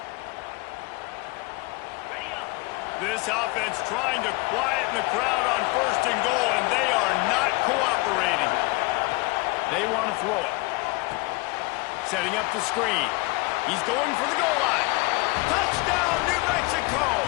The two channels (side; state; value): right; quieter; 24.7 dB